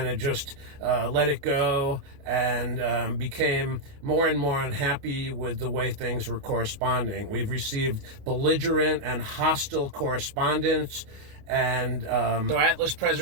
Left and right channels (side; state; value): left; late; 29 ms